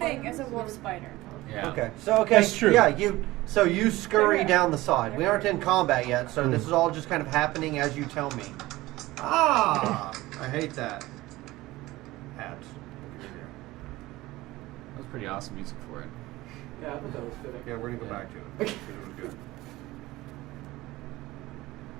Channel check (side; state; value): left; quieter; 18.5 dB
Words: as a wolf spider. Yeah. Okay. So That's true. Yeah, you scurry down the side. We aren't in combat yet, so this is all just kind of happening as you tell me. Ah, I hate that. Hats. That was pretty awesome music for it. Yeah, I thought that was fitting. Yeah, we're gonna go back to it. It was good.